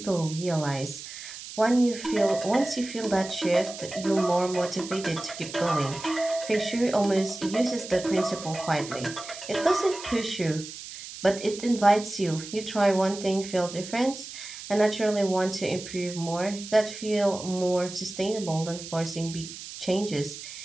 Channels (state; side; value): noise; right; hiss, 12 dB below the sound